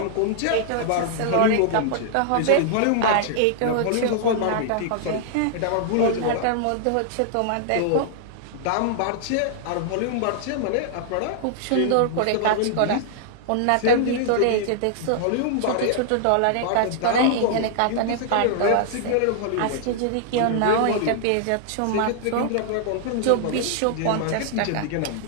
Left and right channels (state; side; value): different; both; correlation -0.01